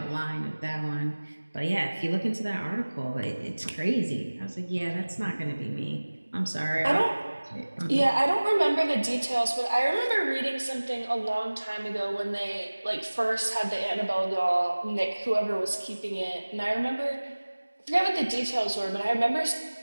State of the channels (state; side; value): inverted; both; correlation -1.00